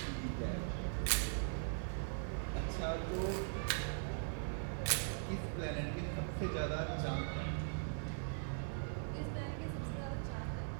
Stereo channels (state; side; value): silent; left; 51 dB below the other